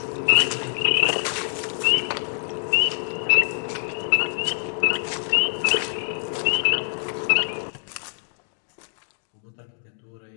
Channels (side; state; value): right; silent; digital silence